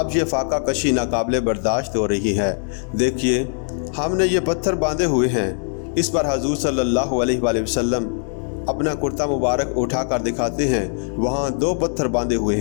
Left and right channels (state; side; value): silent; right; digital silence